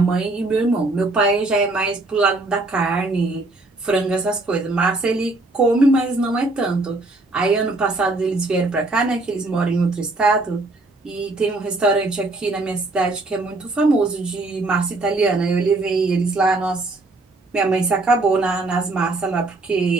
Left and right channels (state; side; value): quieter; left; 3.1 dB